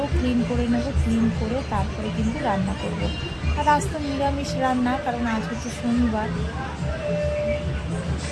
ক্লিন করে নেব, ক্লিন করে তারপরে কিন্তু রান্না করব। আর আজ তো নিরামিষ রান্না, কারণ আজ হচ্ছে শনিবার।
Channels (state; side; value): identical; both; correlation 1.00